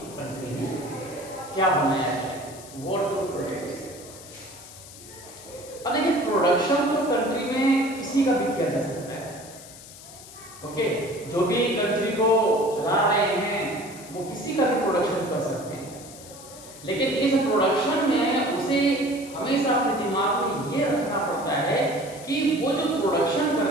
कंट्री में क्या बनाया जाए, व्हाट टू प्रोड्यूस। अब देखिए प्रोडक्शन तो कंट्री में किसी का भी किया जा सकता है, ओके। जो भी कंट्री को चला रहे हैं वो किसी का भी प्रोडक्शन कर सकते हैं, लेकिन इस प्रोडक्शन में उसे हमेशा अपने दिमाग में ये रखना पड़ता है कि वो जो प्रोडक्शन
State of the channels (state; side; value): noise; left; hiss, 17 dB below the sound